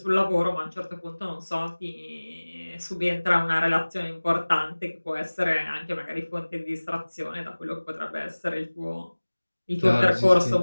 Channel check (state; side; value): inverted; both; correlation -1.00